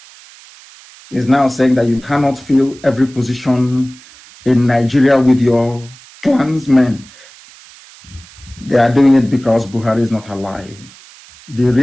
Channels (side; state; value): right; noise; hiss, 23 dB below the sound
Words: is now saying that you cannot fill every position in Nigeria with your clansmen. They are doing it because Buhari is not alive. The